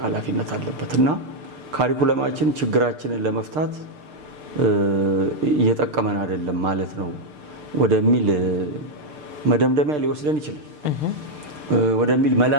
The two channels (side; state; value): left; late; 6.7 ms